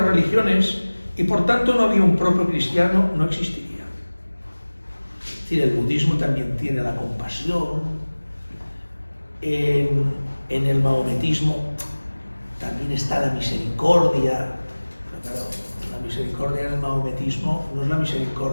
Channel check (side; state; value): both; inverted; correlation -1.00